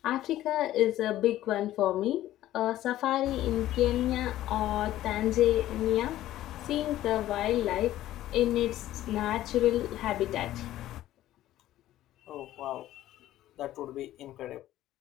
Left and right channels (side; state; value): right; quieter; 14.0 dB